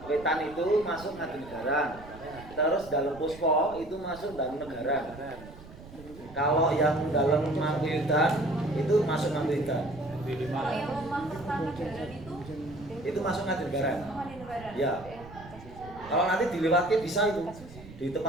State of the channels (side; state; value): right; noise; rumble, 17 dB below the sound